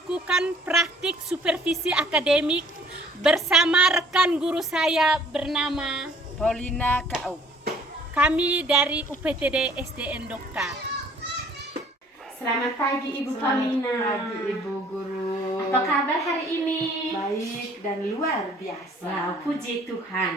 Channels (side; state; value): both; normal; correlation 0.56